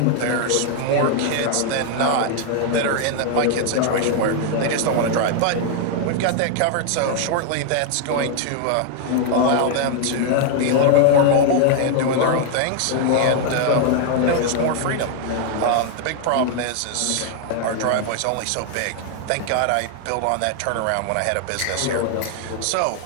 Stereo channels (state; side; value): different; both; correlation 0.00